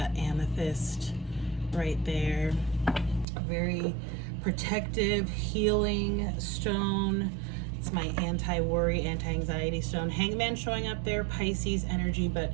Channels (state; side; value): drops out; left; at 3.2 s